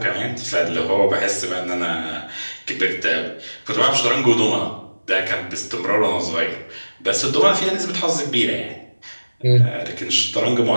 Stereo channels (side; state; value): both; inverted; correlation -1.00